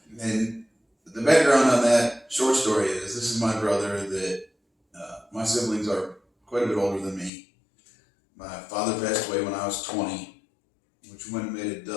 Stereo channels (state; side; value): drops out; right; at 7.3 s